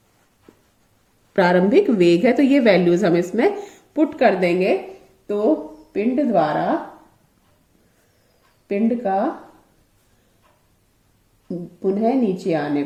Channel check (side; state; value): both; identical; correlation 1.00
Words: प्रारंभिक वेग है। तो ये वैल्यूज हम इसमें पुट कर देंगे, तो पिंड द्वारा पिंड का पुनः नीचे आने